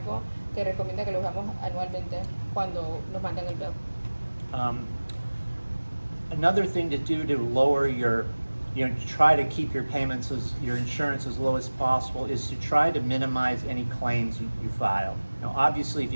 que recomienda que lo hagamos anualmente cuando nos mandan el bill. Another thing to do to lower your, try to keep your payments, your insurance as low as possible, is to try to minimize any claims you file. Now, obviously, if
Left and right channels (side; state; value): both; inverted; correlation -1.00